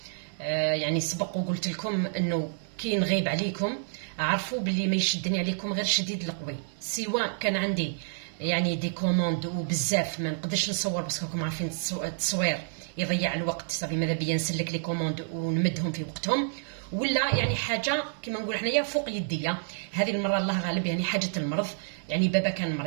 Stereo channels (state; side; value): silent; left; digital silence